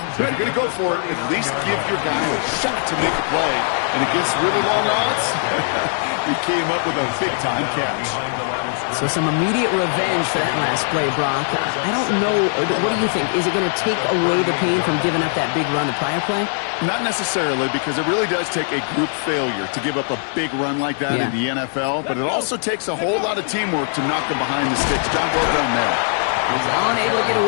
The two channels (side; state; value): right; silent; 65 dB below the other